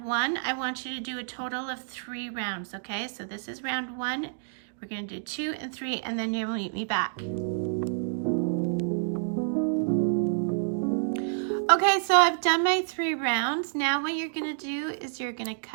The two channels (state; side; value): silent; left; digital silence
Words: 1. I want you to do a total of 3 rounds, okay? So this is round 1. We're going to do 2 and 3, and then you'll meet me back. Okay, so I've done my 3 rounds. Now what you're going to do is you're going to